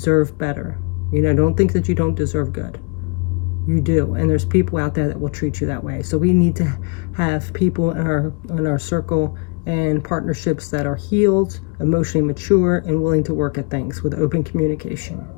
better. You know, don't think that you don't deserve good. You do. And there's people out there that will treat you that way. So we need to have people in our circle and partnerships that are healed, emotionally mature, and willing to work at things with open communication.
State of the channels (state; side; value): quieter; right; 34.1 dB